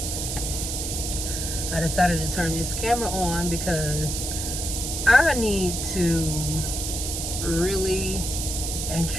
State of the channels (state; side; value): noise; right; hiss, 3 dB below the sound